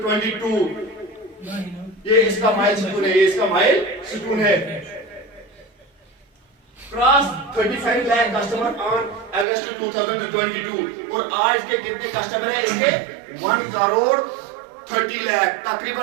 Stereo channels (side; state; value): left; drops out; at 9.5 s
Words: ये इसका mile stone है, ये इसका mile stone है। Cross 35 lakh customer on August 2022। और आज के कितने कस्टमर हैं इसके, 1 करोड़ 30 लाख